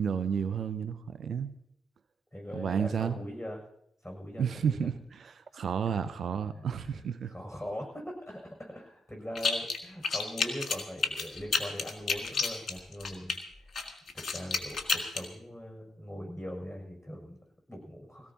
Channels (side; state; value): both; normal; correlation 0.75